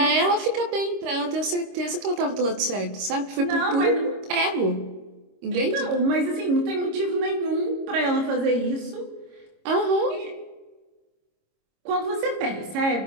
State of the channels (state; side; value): late; left; 26 ms